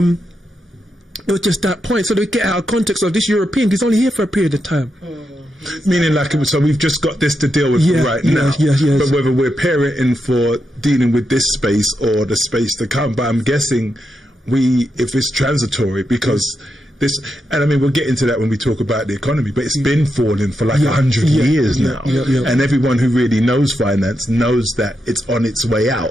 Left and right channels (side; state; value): both; normal; correlation 0.85